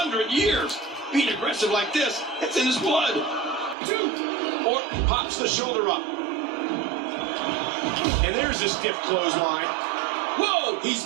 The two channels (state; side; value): drops out; left; at 3.8 s